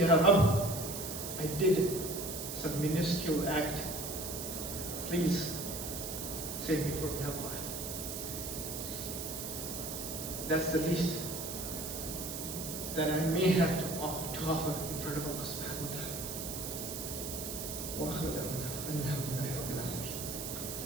Rabb, I did some minuscule act. Please save me from hellfire. That's the least that I may have to offer in front of Allah subhanahu wa ta'ala. Wa akhiru da'wana alhamdulillahi rabbil alamin.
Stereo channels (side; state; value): right; noise; hiss, 6 dB below the sound